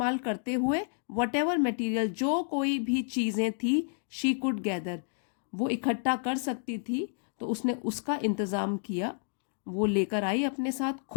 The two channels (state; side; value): silent; right; digital silence